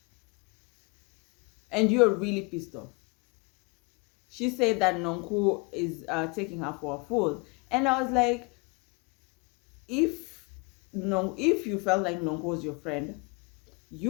And you're really pissed off. She said that Nonku is taking her for a fool. And I was like, if no, if you felt like Nonku was your friend,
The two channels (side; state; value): right; quieter; 30.8 dB